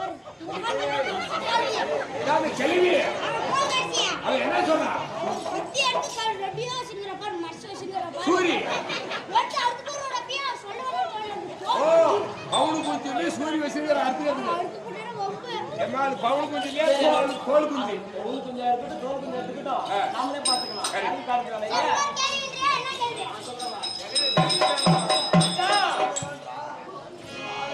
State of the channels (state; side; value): identical; both; correlation 1.00